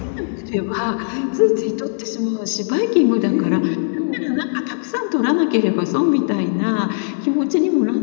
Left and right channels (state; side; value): silent; right; digital silence